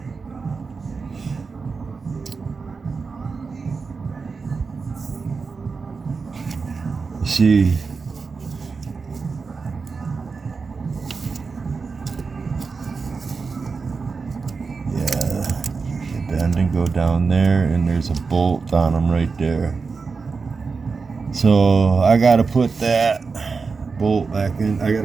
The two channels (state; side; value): quieter; left; 4.7 dB